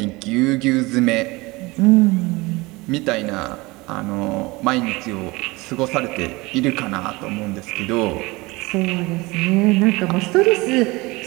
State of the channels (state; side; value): quieter; left; 22.9 dB